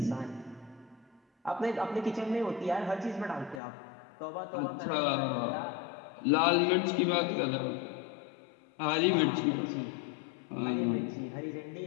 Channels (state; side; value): drops out; right; at 3.6 s